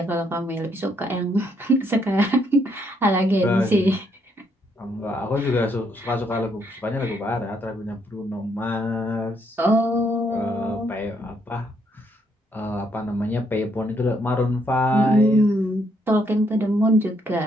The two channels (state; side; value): normal; both; correlation 0.72